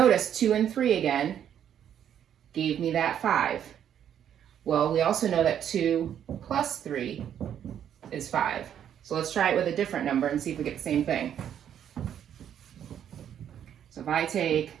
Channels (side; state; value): left; quieter; 9.5 dB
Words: 2 and 3 again gave me that 5. Well, we also know that 2 plus 3 is 5. So let's try it with a different number and see if we get the same thing. So if I take